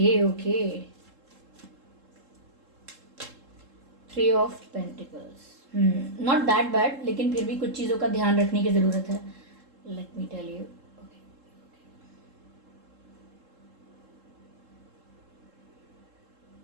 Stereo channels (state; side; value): late; left; 3.7 ms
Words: okay, 3 of pentacles, not that bad, लेकिन फिर भी कुछ चीज़ों का ध्यान रखने की ज़रूरत है। Let me tell you.